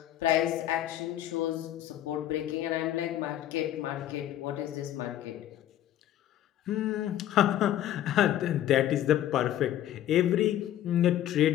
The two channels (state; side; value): quieter; right; 12.3 dB